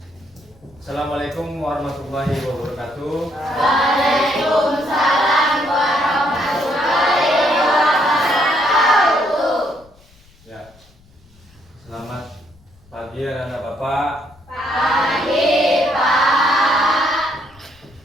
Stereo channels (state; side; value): noise; left; rumble, 29 dB below the sound